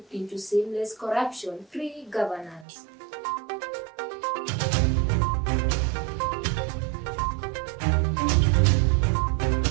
into seamless corruption-free governance.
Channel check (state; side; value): drops out; left; at 2.7 s